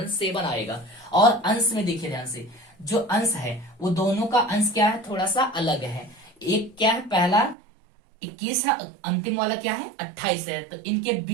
7 आएगा। और अंश में देखिए ध्यान से, जो अंश है वो दोनों का अंश क्या है? थोड़ा सा अलग है। एक क्या है? पहला 21 है, अंतिम वाला क्या है? 28 है। तो इनके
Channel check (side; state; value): left; drops out; at 7.6 s